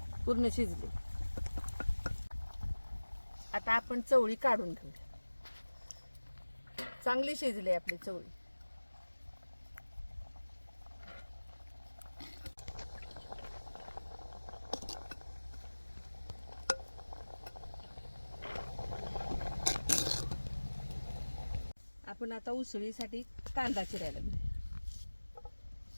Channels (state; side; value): inverted; both; correlation -1.00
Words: पूर्ण शिजली. आता आपण चवळी काढून घेऊ. चांगली शिजली आपली चवळी. आपण आता उसळीसाठी कांदा चिरायला घेऊ.